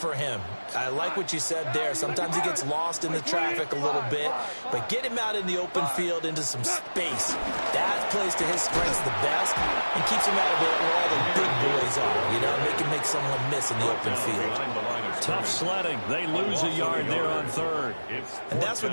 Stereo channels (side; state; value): both; inverted; correlation -1.00